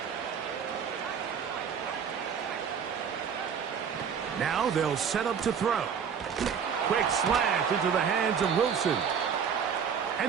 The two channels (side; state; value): left; quieter; 7.2 dB